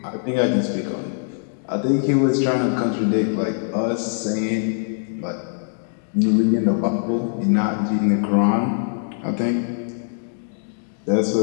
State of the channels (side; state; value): right; silent; digital silence